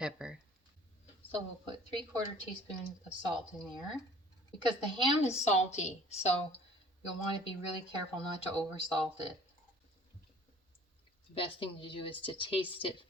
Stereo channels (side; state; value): both; normal; correlation 0.51